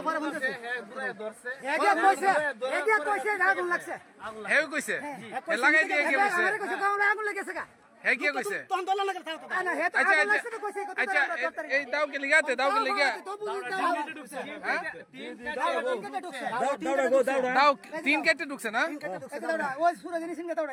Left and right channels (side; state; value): both; identical; correlation 1.00